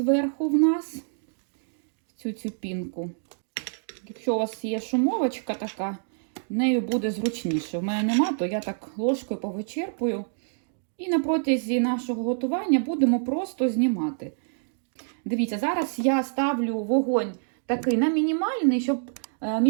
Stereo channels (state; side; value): silent; left; digital silence